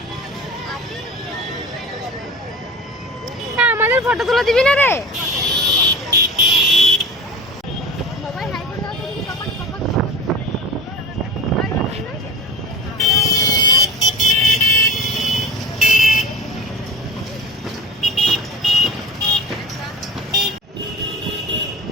হ্যাঁ আমাদের ফটো তুলে দিবি না রে?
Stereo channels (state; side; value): normal; both; correlation 0.35